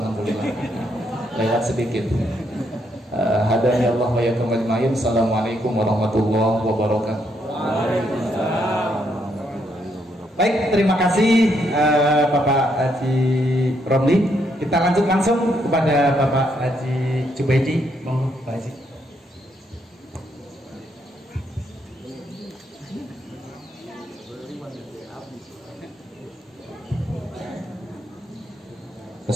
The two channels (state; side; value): normal; both; correlation 0.75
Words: alhamdulillah. Lewat sedikit. Hadani Allah wa yakum ajmain. Assalamualaikum warahmatullahi wabarakatuh. Baik, terima kasih Bapak Haji Romli. Kita lanjut langsung kepada Bapak Haji Jubaidi. Monggo Pak Haji.